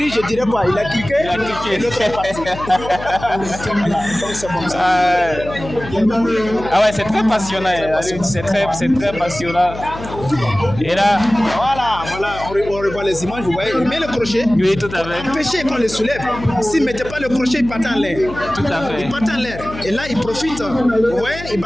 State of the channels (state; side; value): noise; left; hum, 12 dB below the sound